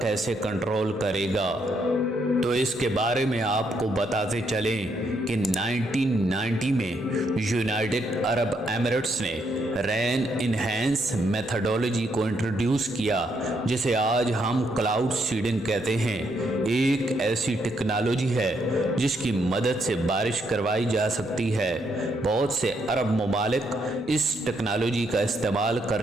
کنٹرول کرے گا؟ تو اس کے بارے میں آپ کو بتاتے چلیں کہ 1990 میں یونائٹڈ عرب ایمریٹس نے رین انہینس میتھڈولوجی کو انٹروڈیوس کیا، جسے آج ہم کلاؤڈ سیڈنگ کہتے ہیں۔ ایک ایسی ٹیکنالوجی ہے جس کی مدد سے بارش کروائی جا سکتی ہے۔ بہت سے عرب ممالک اس ٹیکنالوجی کا استعمال کر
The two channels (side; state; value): both; normal; correlation 0.75